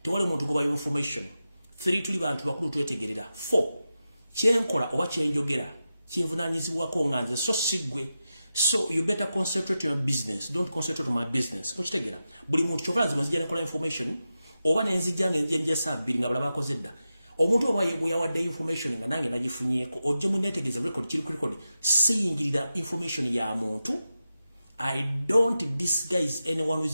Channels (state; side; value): inverted; both; correlation -0.91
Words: tewaliwo omuntu gwe bayo information. 3 tuli bantu bakulu twetegerera. 4 kyenkola oba kyenjogera kinvunaanyizibwako nga nze so siggwe. So you better concentrate on your business. Don't concentrate on my business. Mukitegera. Buli muntu kyokala nzima nzija nekola information oba nenzija ngenje sabbiri nga balaba akoze dda. Omuntu oba yawadde information nga nange nagifunyeeko ojje muneetegereza record kiri ku record siyingirira information ya muntu. I don't disguise anyone